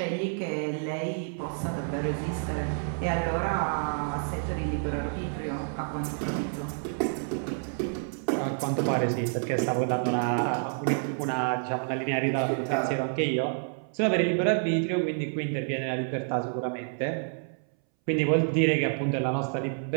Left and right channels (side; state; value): left; silent; 59 dB below the other